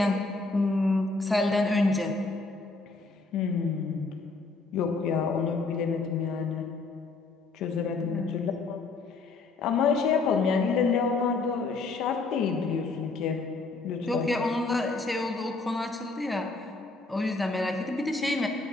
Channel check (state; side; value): quieter; right; 3.8 dB